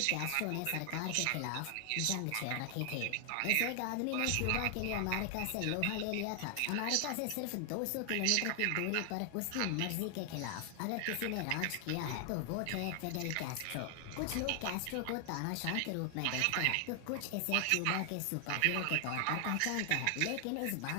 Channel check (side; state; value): both; different; correlation 0.00